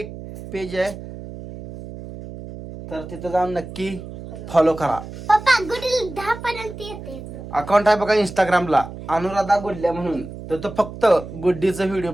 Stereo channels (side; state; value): right; noise; hum, 12 dB below the sound